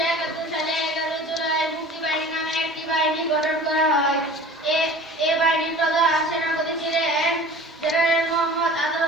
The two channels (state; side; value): normal; both; correlation 0.41